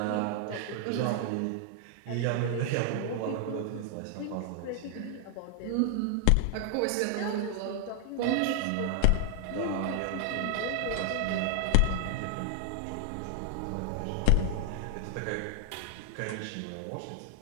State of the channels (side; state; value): both; different; correlation 0.00